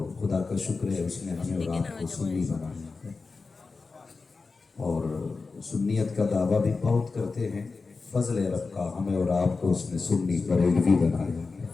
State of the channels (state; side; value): quieter; right; 4.2 dB